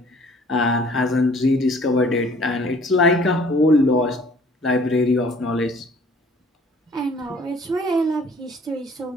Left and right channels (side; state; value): both; normal; correlation 0.54